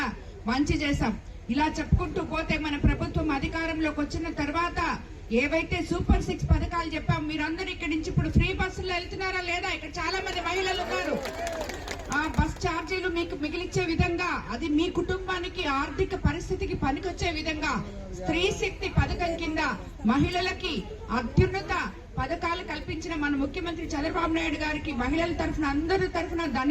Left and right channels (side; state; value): both; identical; correlation 1.00